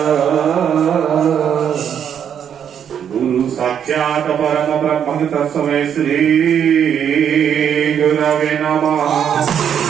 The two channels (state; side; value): quieter; left; 8.5 dB